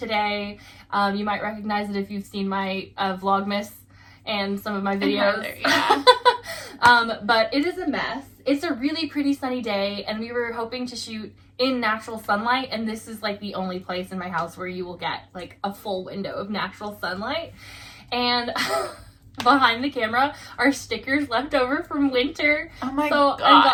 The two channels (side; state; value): both; identical; correlation 1.00